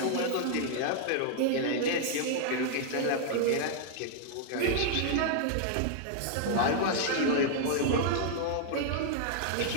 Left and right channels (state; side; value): different; both; correlation 0.00